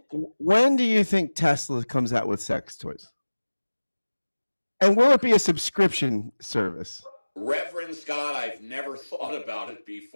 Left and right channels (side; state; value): both; inverted; correlation -1.00